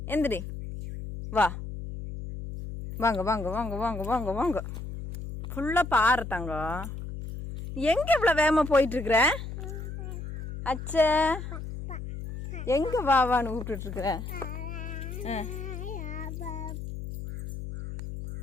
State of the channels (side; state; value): left; noise; hum, 8 dB below the sound